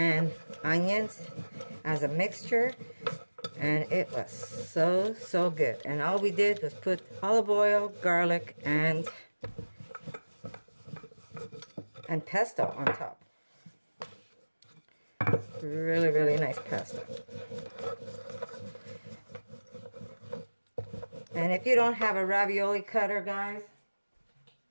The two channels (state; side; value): inverted; both; correlation -1.00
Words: onions as a mixture. And it was so good. And all we did was put olive oil, garlic, and pesto on top. Really nice pasta. And if you don't have a ravioli cutter, guys,